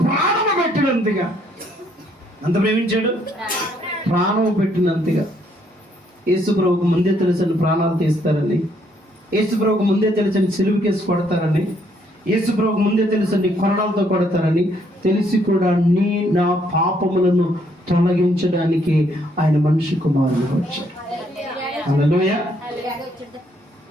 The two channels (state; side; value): normal; both; correlation 0.69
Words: ప్రాణము పెట్టినంతగా. ఎంత ప్రేమించాడు? ప్రాణం పెట్టినంతగా. యేసుప్రభుకు ముందే తెలుసని ప్రాణాలు తీస్తారని, యేసుప్రభుకు ముందే తెలుసని సిలువకేసి కొడతారని, యేసుప్రభుకు ముందే తెలుసని కొరడాలతో కొడతారని తెలిసి కూడా నా పాపములను తొలగించడానికి ఆయన మనిషి కుమారుడు వచ్చాడు. హల్లెలూయా.